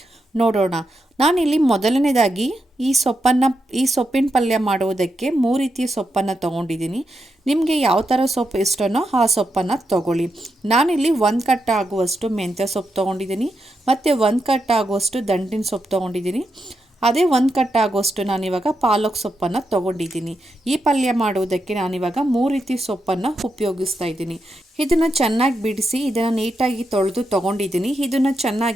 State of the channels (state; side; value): normal; both; correlation 0.85